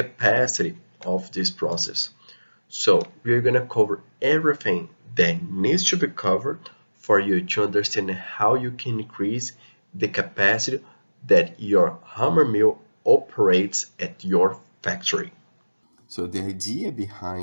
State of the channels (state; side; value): inverted; both; correlation -1.00